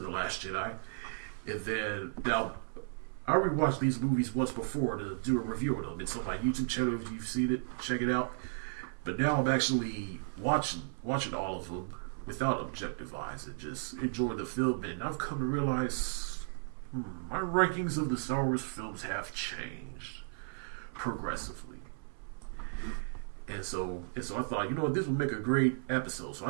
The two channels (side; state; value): left; silent; 55 dB below the other